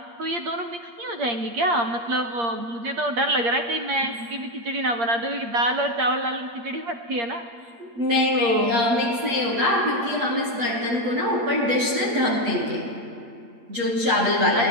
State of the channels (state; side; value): late; left; 8.5 ms